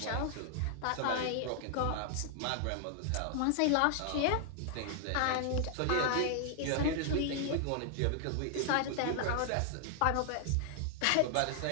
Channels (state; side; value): different; both; correlation 0.00